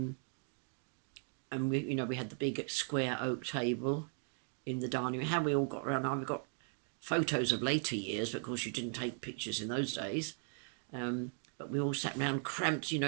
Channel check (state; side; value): silent; left; 53 dB below the other